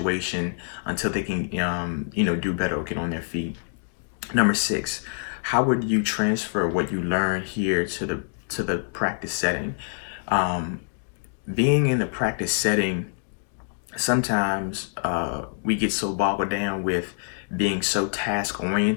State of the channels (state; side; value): silent; right; digital silence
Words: until they can, do better or get on their feet. Number six, how would you transfer what you learned here to the practice setting? Being in the practice setting, sometimes we get so boggled down with being so task